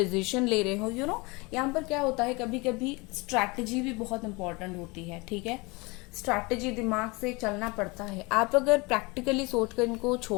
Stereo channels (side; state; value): right; quieter; 26.1 dB